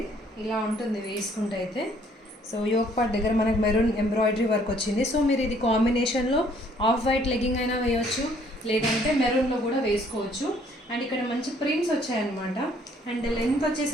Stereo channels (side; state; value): both; normal; correlation 0.62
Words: ఇలా ఉంటుంది వేసుకుంటే అయితే. సో యోక్ పార్ట్ దగ్గర మనకి మెరూన్ ఎంబ్రాయిడరీ వర్క్ వచ్చింది. సో మీరు ఇది కాంబినేషన్లో ఆఫ్ వైట్ లెగ్గింగ్ అయినా వేయవచ్చు, లేదంటే మెరూన్లో కూడా వేసుకోవచ్చు. అండ్ ఇక్కడ మంచి ప్రింట్స్ వచ్చాయన్నమాట. అండ్ లెంత్